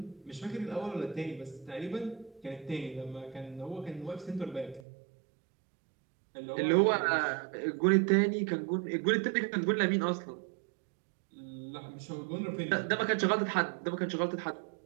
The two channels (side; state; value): left; drops out; at 4.8 s